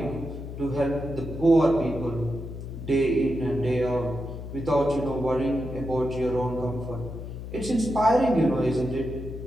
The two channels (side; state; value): left; noise; hum, 9 dB below the sound